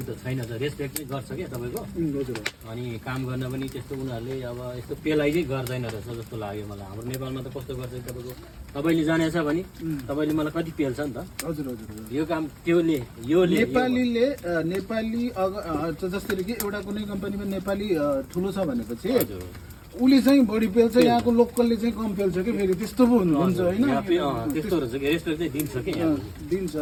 त छैन, त रेस्पेक्ट चाहिँ गर्छ क्या तपाईँको। हजुर। अनि काम गर्न पनि त्यस्तो उनीहरूले अब यस्तो पेलाइ चाहिँ गर्दैन रहेछ जस्तो लाग्यो मलाई। हाम्रो नेपालमा त कस्तो गर्छ तपाईँको, तपाईँले जानेछ भने तपाईँले मलाई कति पेल्छ नि त। हजुर हजुर। यो काम त्योले यो नेपाली जसरी कि एउटा कुनै कम्पनीमा नेपाली ठुलो छ भनेपछि उसले चाहिँ बढी पेल्छ, यहाँको लोकलले चाहिँ कम पेल्छ कि फेरि त्यस्तो पो हुन्छ होइन। त्यस्तो रहेछ कि रेस्पेक्ट चाहिँ दिन्छ कि दिन्छ।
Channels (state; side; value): identical; both; correlation 1.00